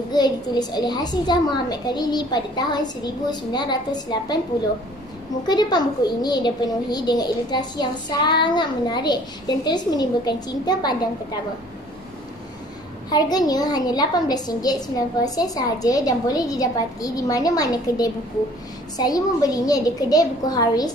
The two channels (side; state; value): both; normal; correlation 0.54